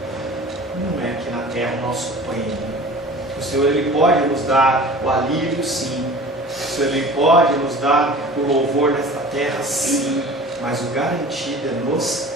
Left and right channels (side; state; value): both; normal; correlation 0.42